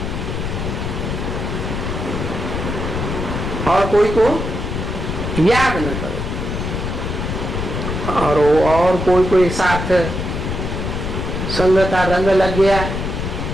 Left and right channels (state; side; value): noise; left; rumble, 3 dB below the sound